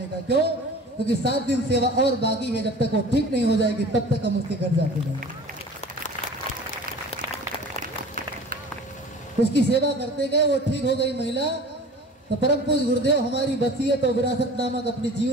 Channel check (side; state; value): both; normal; correlation 0.41